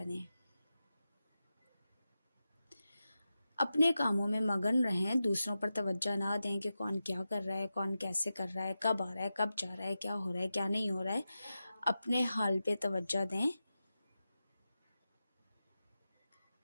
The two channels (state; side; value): inverted; both; correlation -0.92